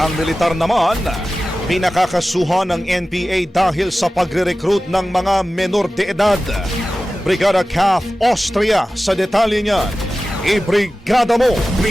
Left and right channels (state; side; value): normal; both; correlation 0.95